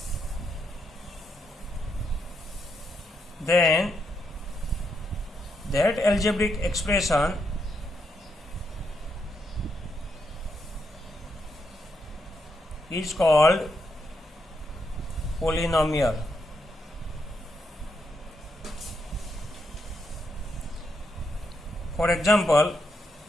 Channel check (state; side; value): normal; both; correlation 0.80